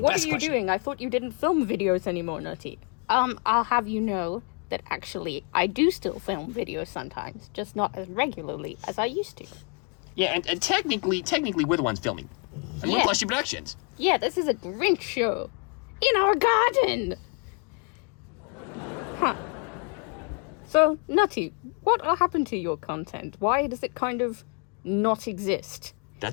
what best are you question. doing? I thought you didn't film videos anymore, Nutty. I'll have you know that actually I do still film videos sometimes, just not as regularly as I used to. Yeah, and technically, we're the ones filming. And we're Yeah. Plushy Productions. Yeah, this is a Grinch show. In our garden! Huh. So, Nutty, what happened to your content? Why does it kind of not exist?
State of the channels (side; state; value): right; quieter; 35.4 dB